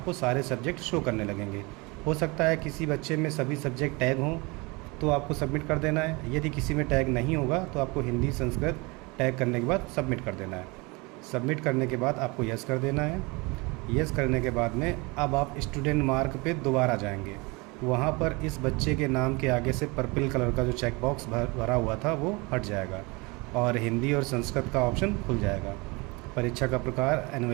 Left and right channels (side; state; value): left; quieter; 26.5 dB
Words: सारे सब्जेक्ट शो करने लगेंगे। हो सकता है किसी बच्चे में सभी सब्जेक्ट टैग हों तो आपको सबमिट कर देना है। यदि किसी में टैग नहीं होगा तो आपको हिंदी संस्कृत टैग करने के बाद सबमिट कर देना है। सबमिट करने के बाद आपको यस कर देना है। यस करने के बाद में अब आप स्टूडेंट मार्क पे दोबारा जाएंगे। वहाँ पर इस बच्चे के नाम के आगे से पर्पल कलर का जो चेक बॉक्स भरा हुआ था वो हट जाएगा और हिंदी और संस्कृत का ऑप्शन खुल जाएगा। परीक्षा का प्रकार